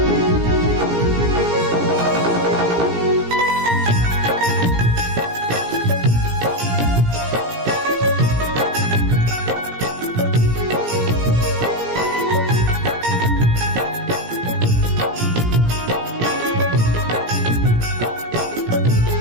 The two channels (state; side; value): late; left; 17 ms